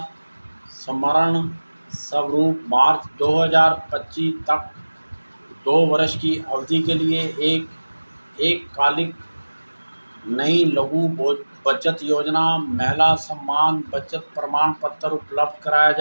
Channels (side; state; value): both; inverted; correlation -1.00